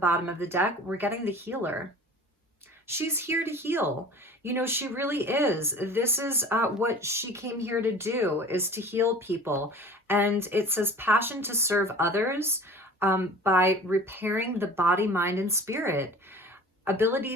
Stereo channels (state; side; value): normal; both; correlation 0.42